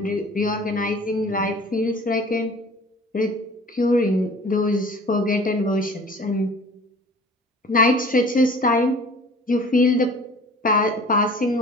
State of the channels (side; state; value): both; normal; correlation 0.46